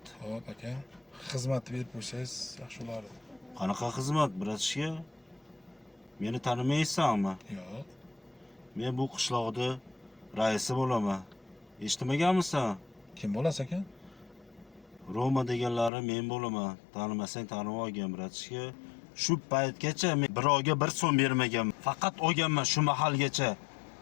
Xo'p aka. Xizmatni berib qo'ysangiz yaxshi bo'lardi. Qanaqa xizmat, bratishka? Meni tanimaysanmi? Yo'q. Men bu qishloqda raisi bo'laman. Eshitmaganmisan? Kim bo'lasa ekan? Roma deganlari men bo'laman. Tanimasang tanib olgin, bratishka. Shu paytgacha men birovga 1 so'm bermaganman. Faqat olganman shu mahalgacha.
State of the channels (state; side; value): drops out; right; at 15.9 s